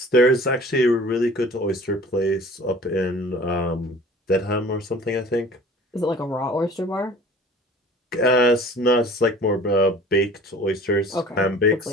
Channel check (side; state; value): both; normal; correlation 0.46